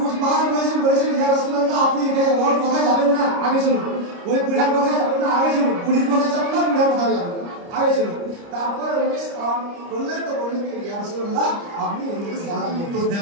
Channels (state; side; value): late; left; 29 ms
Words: বার বলেছেন ইয়া রাসূলুল্লাহ আপনি এখানে ওর কথায় যাবেন না, আগে চলুন। ওই বুড়ার কথায় যাবেন না, আগে চলুন। বুড়ির কথায় যাবেন না, বুড়ার কথায় যাবেন না, আগে চলুন। তারপরে উনি সালাম করলেন, তো বললেন ইয়া রাসূলুল্লাহ আপনি ওনাকে সালাম উত্তর